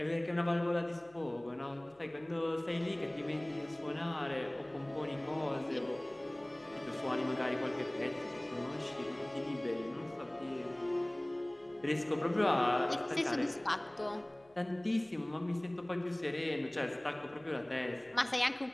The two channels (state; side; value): noise; left; hum, 30 dB below the sound